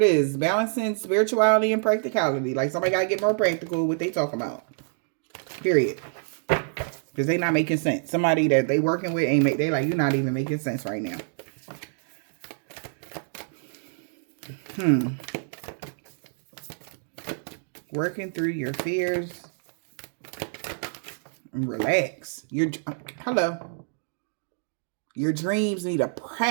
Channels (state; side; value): silent; left; 60 dB below the other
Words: is. Balancing spirituality and practicality. Like, somebody got to get more practical with what they talking about. Period. Because they not making sense. Somebody that they working with ain't they like, you're not even making sense right now. Working through your fears. And relax. Hello. Your dreams need a